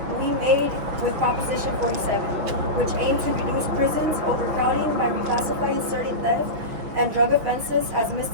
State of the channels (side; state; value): left; late; 6.2 ms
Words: we made with Proposition 47, which aimed to reduce prisons overcrowding by reclassifying certain theft and drug offenses as